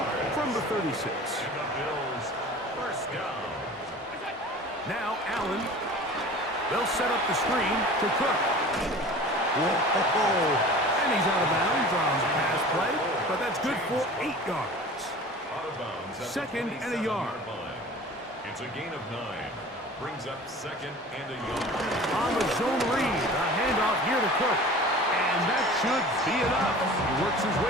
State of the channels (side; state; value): both; normal; correlation 0.41